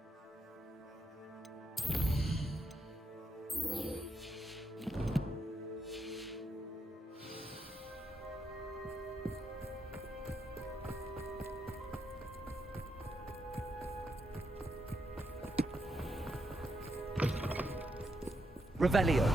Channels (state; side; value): normal; both; correlation 0.81